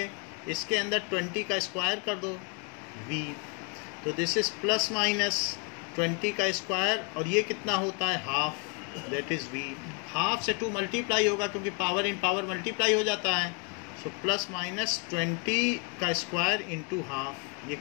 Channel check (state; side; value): quieter; right; 33.7 dB